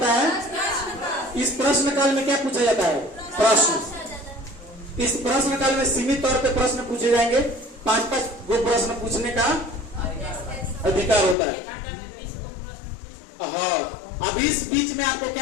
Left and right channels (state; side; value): drops out; right; at 11.4 s